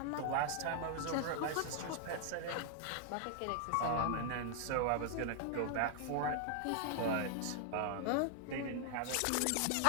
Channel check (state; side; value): different; both; correlation 0.00